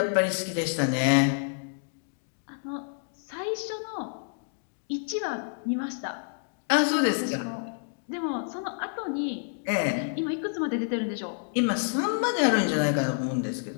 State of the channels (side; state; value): right; silent; digital silence